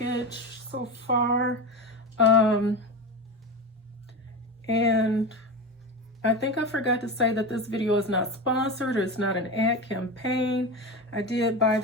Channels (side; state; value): both; normal; correlation 0.22